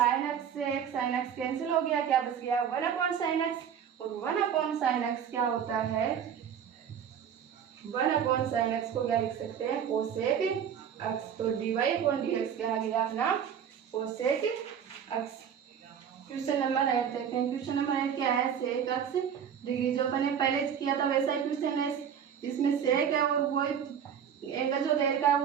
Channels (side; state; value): left; quieter; 8.2 dB